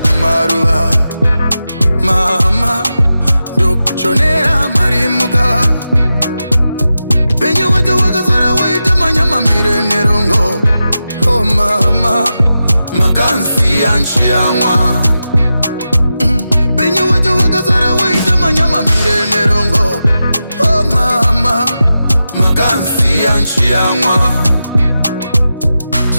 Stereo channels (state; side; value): inverted; both; correlation -0.91